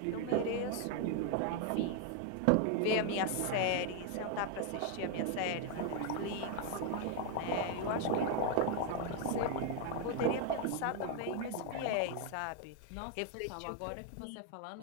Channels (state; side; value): different; both; correlation 0.00